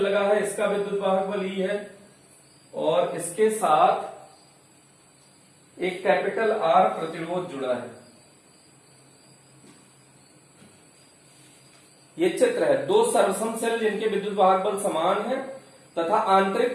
है, इसका विद्युत वाहक बल E है, और इसके साथ एक कैपिटल R प्रतिरोध जुड़ा है। ये चित्र है, दो सर्वसम सेल जिनके विद्युत वाहक बल समान है तथा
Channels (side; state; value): both; identical; correlation 1.00